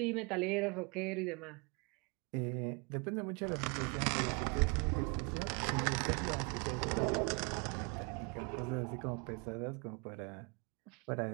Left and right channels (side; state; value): left; quieter; 31.8 dB